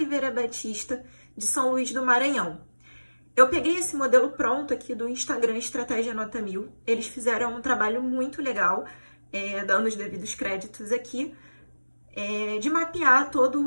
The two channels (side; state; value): both; inverted; correlation -1.00